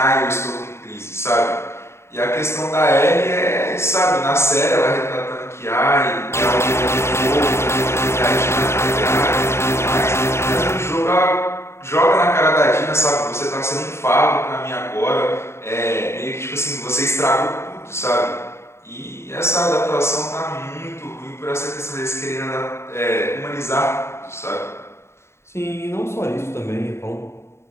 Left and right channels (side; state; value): right; late; 0.13 ms